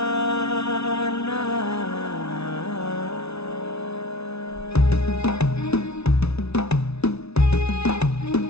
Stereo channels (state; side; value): late; right; 0.80 ms